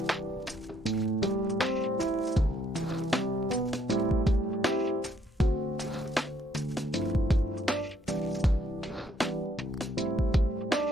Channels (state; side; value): normal; both; correlation 0.69